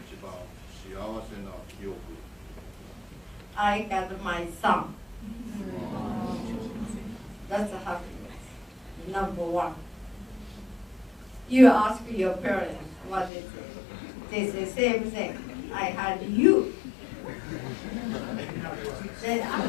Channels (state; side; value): drops out; right; at 13.3 s